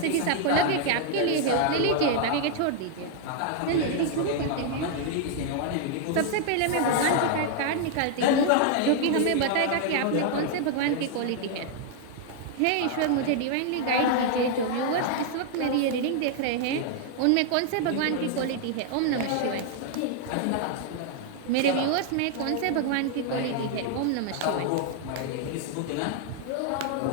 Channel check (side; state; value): both; different; correlation 0.00